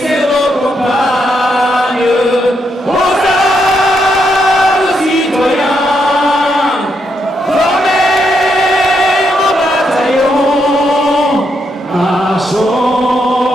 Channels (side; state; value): both; normal; correlation 0.79